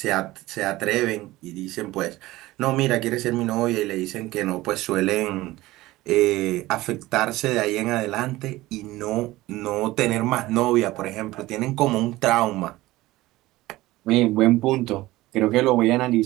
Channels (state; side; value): quieter; left; 18.0 dB